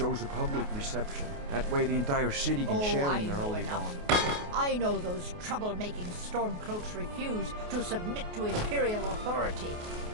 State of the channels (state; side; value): late; left; 28 ms